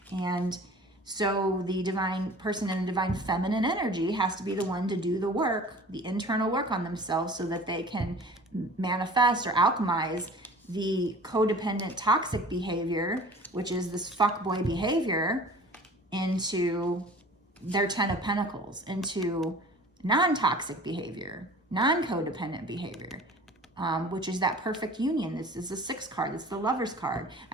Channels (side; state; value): both; normal; correlation 0.44